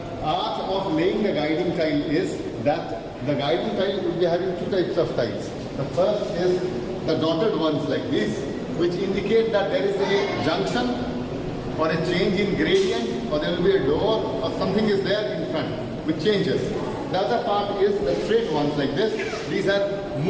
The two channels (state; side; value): identical; both; correlation 1.00